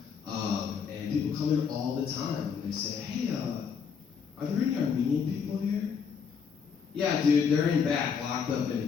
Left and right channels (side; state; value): right; quieter; 6.5 dB